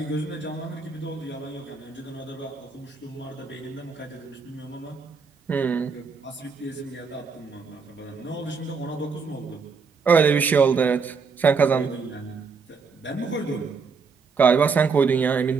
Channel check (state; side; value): quieter; left; 5.1 dB